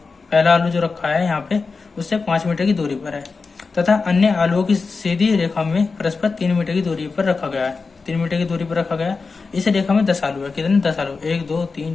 आलू जो रखा है यहाँ पे उससे 5 मीटर की दूरी पर है, तथा अन्य आलुओं की सीधी रेखा में परस्पर 3 मीटर की दूरी पर रखा गया है। 3 मीटर की दूरी पर रखा गया है। इस रेखा में 10 आलू है। कितने? 10 आलू। 1 2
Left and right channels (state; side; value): quieter; right; 4.4 dB